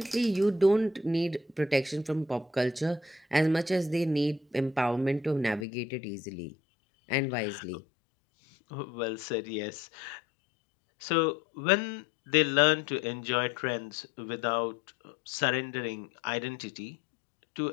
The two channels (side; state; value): right; drops out; at 5.7 s